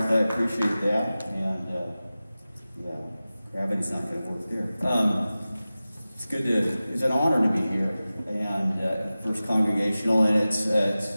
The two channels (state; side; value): inverted; both; correlation -0.96